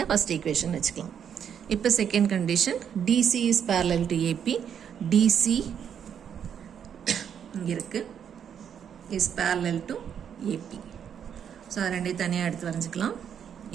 ஃபஸ்ட் ஈக்குவேஷன் வச்சுக்கலாம். இப்போ second condition, DC is parallel to AP. DC இங்கே இருக்குது, is parallel to AP. So அது ரெண்டையும் தனியாக எடுத்து வரைஞ்சிக்கலாம்.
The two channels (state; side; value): quieter; left; 8.3 dB